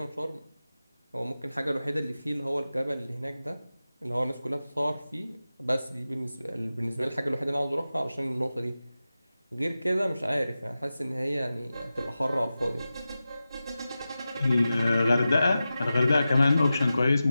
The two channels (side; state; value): both; inverted; correlation -0.94